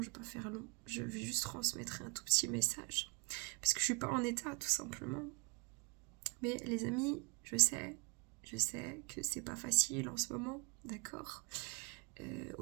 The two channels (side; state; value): left; quieter; 33.0 dB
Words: je ne vais pas faire long. Je vais juste transmettre un tout petit message. Parce que je ne suis pas en état, tout simplement. Mais les amis, je sais que c'est pas facile en ce moment, d'accord.